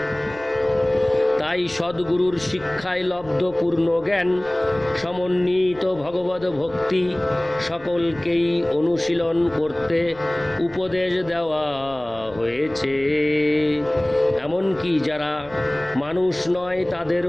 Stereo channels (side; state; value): left; noise; rumble, 22 dB below the sound